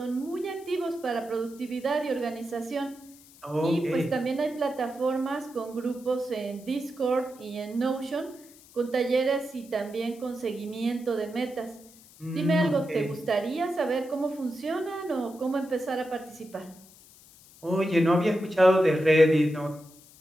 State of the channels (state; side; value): noise; left; hiss, 23 dB below the sound